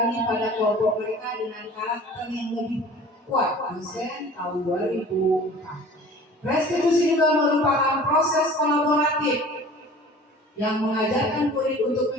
pada kelompok mereka dengan karakter yang lebih kuat. Dosen tahun 2004. Restitusi juga merupakan proses kolaboratif yang mengajarkan murid untuk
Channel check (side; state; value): both; normal; correlation 0.44